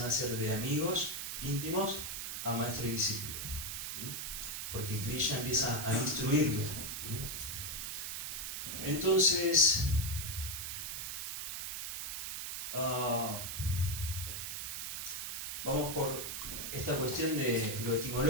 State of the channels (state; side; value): noise; right; hiss, 4 dB below the sound